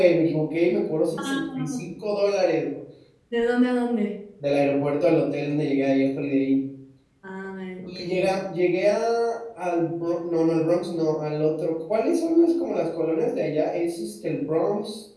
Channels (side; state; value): both; identical; correlation 1.00